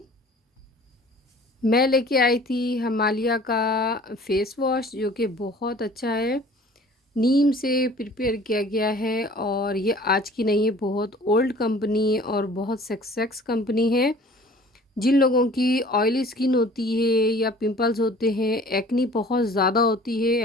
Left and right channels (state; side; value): normal; both; correlation 0.49